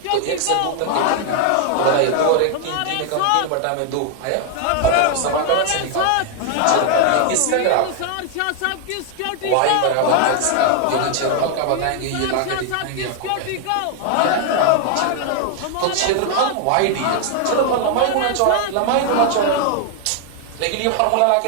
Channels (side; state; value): both; different; correlation 0.00